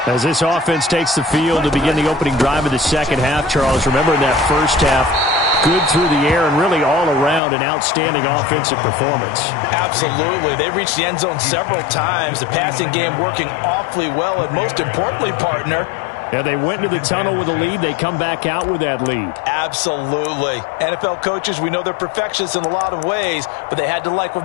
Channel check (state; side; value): drops out; right; at 7.4 s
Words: As this offense takes the field to begin the opening drive of the second half, Charles, remember in that first half, good through the air and really all around an outstanding offensive performance. Absolutely. They reached the end zone several times. The passing game working awfully well, and most importantly, partner, yeah, they went into the tunnel with a lead. They come back out with that lead. Absolutely. NFL coaches, we know they're perfectionists in a lot of ways, but they had to like what